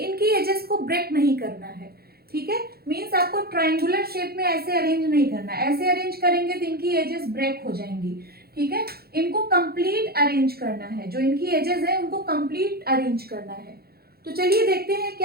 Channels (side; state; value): left; late; 0.45 ms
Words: एजेस को ब्रेक नहीं करना है, ठीक है। मींस आपको ट्रायंगुलर शेप में ऐसे अरेंज नहीं करना, ऐसे अरेंज करेंगे तो इनकी एजेस ब्रेक हो जाएंगी, ठीक है। इनको कंप्लीट अरेंज करना है, जो इनकी एजेस है उनको कंप्लीट अरेंज करना है। तो चलिए देखते हैं